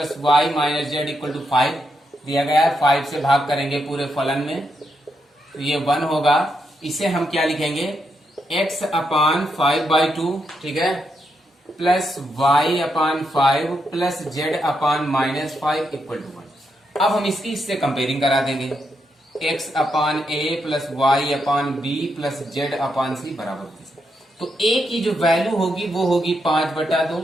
Y minus Z equal to 5 दिया गया है। 5 से भाग करेंगे पूरे फलन में, तो ये 1 होगा। इसे हम क्या लिखेंगे, x अपान 5/2, ठीक है, plus y upon 5 plus z upon minus 5 equal to 1। अब हम इसकी इससे कंपेयरिंग करा देंगे। x upon a plus Y upon B plus Z upon c बराबर होगी। तो a की जो वैल्यू होगी वो होगी 5/2,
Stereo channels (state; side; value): normal; both; correlation 0.81